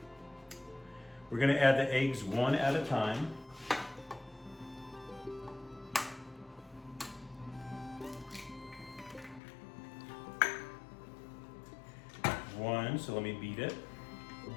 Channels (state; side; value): drops out; right; at 9.4 s